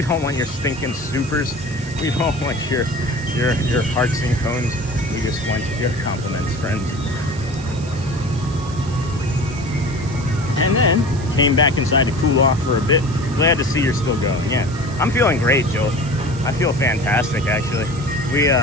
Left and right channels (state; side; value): noise; right; hiss, 18 dB below the sound